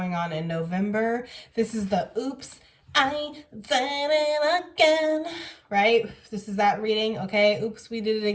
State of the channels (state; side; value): identical; both; correlation 1.00